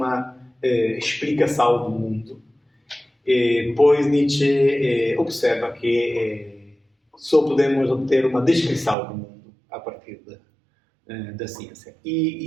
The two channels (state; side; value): drops out; left; at 9.0 s